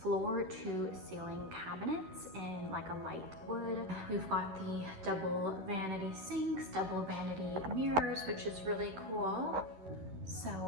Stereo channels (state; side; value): late; left; 11 ms